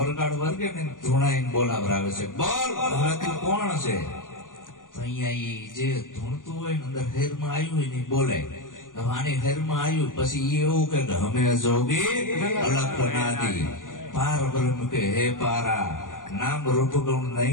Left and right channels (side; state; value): right; late; 0.88 ms